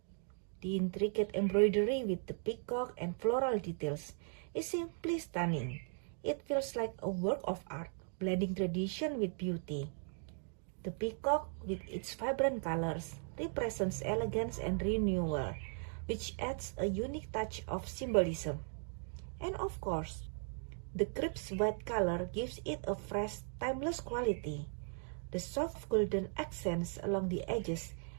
The intricate embroidery with the peacock and floral details is simply stunning. It feels like a work of art, blending tradition with beauty. The peacock, with its vibrant colors, represents elegance and renewal, which adds a unique touch of symbolism. And of course, the crisp white color gives it a fresh, timeless quality. The soft golden accents along the edges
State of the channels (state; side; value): silent; left; 53 dB below the other